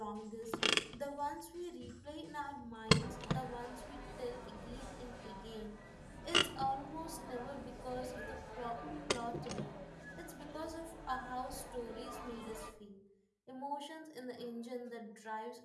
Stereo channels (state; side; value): identical; both; correlation 1.00